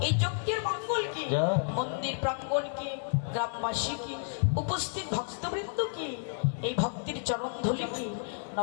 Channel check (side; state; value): right; silent; digital silence